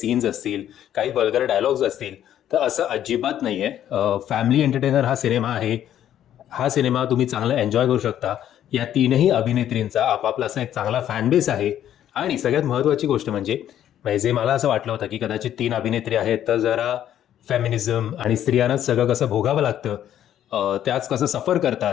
असतील, काही वल्गर डायलॉग्स असतील. तर असं अजिबात नाही आहे. फॅमिली एंटरटेनर हा सिनेमा आहे. हा सिनेमा तुम्ही चांगला एन्जॉय करू शकता. या तीनही अभिनेत्रींचा आपापला असा एक चांगला फॅन बेस आहे. आणि सगळ्यात महत्त्वाची गोष्ट म्हणजे जे मला असं वाटलं होतं की कदाचित 3 अभिनेत्री आहेत तर जरा फेमिनिझम आणि स्त्रियांनाच सगळं कसं भोगावं लागतं, त्याच कसं सफर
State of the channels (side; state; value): right; quieter; 11.0 dB